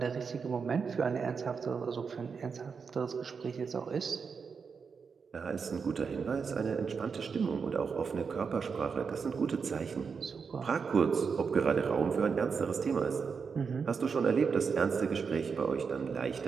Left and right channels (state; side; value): quieter; left; 5.7 dB